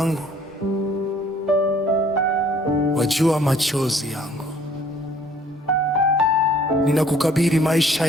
wajua machozi yangu. Ninakukabidhi maisha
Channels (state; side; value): normal; both; correlation 0.58